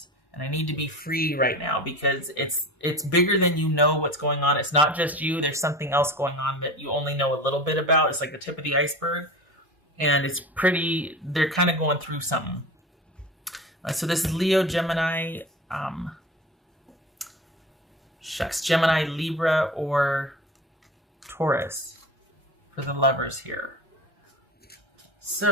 and I need to be free right now because it's bigger than you know what's going on. It's not just you. There's something else going on that you only know a little bit about. It's like the tip of the iceberg and they're kind of going through something. So this is Leo, Gemini, Gemini, Libra, or Taurus for the lovers here.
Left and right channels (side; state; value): both; normal; correlation 0.32